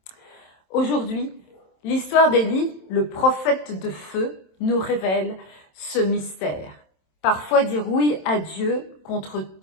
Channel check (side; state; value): right; late; 27 ms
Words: Aujourd'hui, l'histoire d'Élie, le prophète de feu, nous révèle ce mystère. Parfois dire oui à Dieu contre